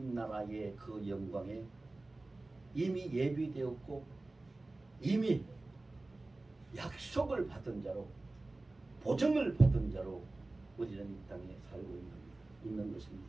나라의 그 영광에 이미 예비되었고 이미 약속을 받은 자로 보증을 받은 자로 우리는 이 땅에 살고 있는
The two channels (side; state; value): left; quieter; 3.0 dB